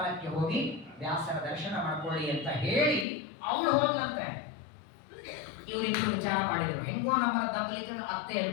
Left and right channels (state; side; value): drops out; right; at 3.1 s